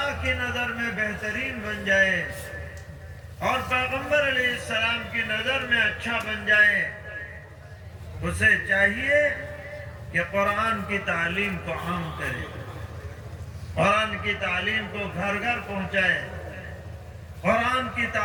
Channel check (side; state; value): both; identical; correlation 1.00